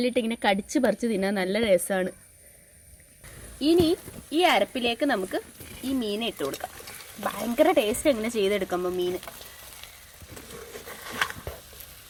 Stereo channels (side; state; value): both; identical; correlation 1.00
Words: ഇങ്ങനെ കടിച്ച് പറിച്ച് തിന്നാൻ നല്ല രസമാണ്. ഇനി ഈ അരപ്പിലേക്ക് നമുക്ക് ഈ മീനെ ഇട്ട് കൊടുക്കാം. ഭയങ്കര ടേസ്റ്റ് എങ്ങനെ ചെയ്തെടുക്കുമ്പോൾ മീൻ